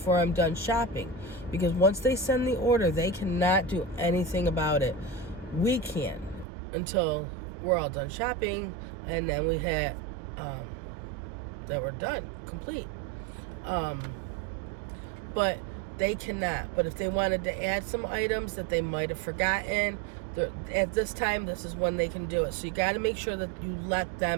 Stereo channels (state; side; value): drops out; left; at 6.5 s